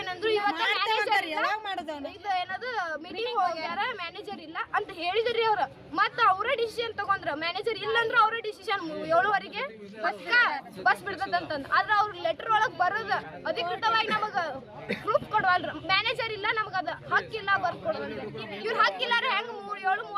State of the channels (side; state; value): both; identical; correlation 1.00